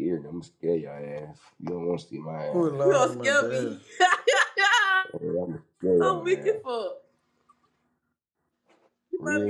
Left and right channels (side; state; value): both; identical; correlation 1.00